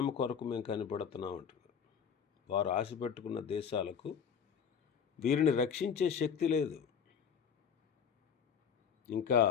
కొరకు మేము కనిపెడుతున్నాం అంటున్నారు. వారు ఆశపెట్టుకున్న దేశాలకు వీరిని రక్షించే శక్తి లేదు. ఇంకా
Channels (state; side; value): quieter; right; 7.2 dB